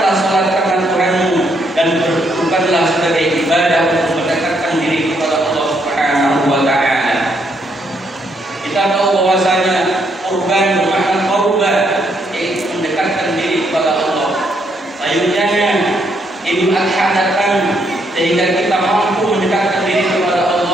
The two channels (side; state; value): both; normal; correlation 0.74